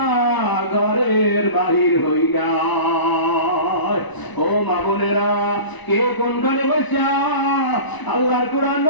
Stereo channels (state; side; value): late; right; 1.0 ms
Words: ঘরের বাহির হই না ও মা বোনেরা কে কোনখানে বসা আল্লাহর কোরআন